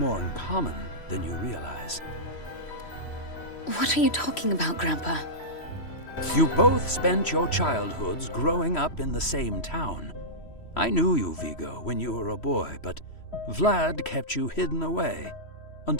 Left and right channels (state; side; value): late; right; 3.1 ms